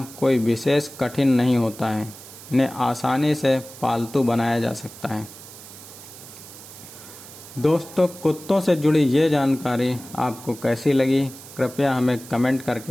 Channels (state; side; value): noise; right; hiss, 17 dB below the sound